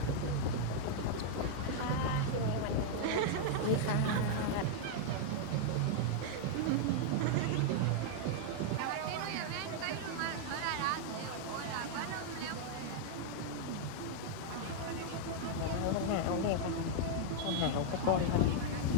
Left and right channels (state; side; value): different; both; correlation -0.01